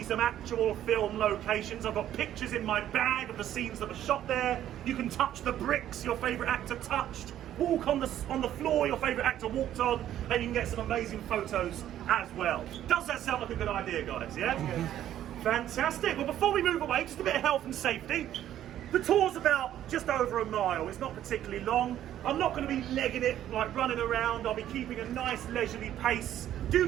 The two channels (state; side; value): quieter; left; 11.7 dB